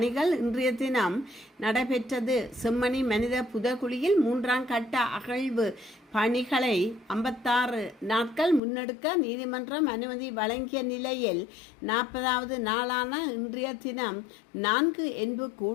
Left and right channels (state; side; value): drops out; right; at 8.6 s